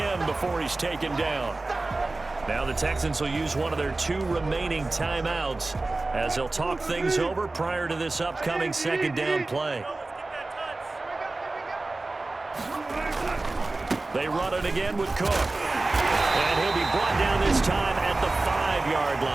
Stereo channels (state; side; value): quieter; left; 3.2 dB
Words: before he's taken down. Now the Texans will use one of their 2 remaining timeouts as they'll talk things over prior to this upcoming second down play. They run it again with Cook. And he'll be brought down this time at the 5-yard